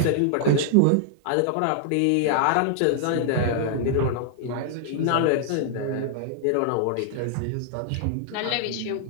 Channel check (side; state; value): both; different; correlation -0.01